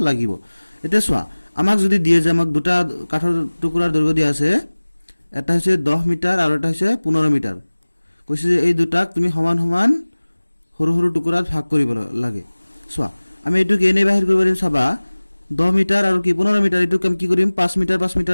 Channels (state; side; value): inverted; both; correlation -1.00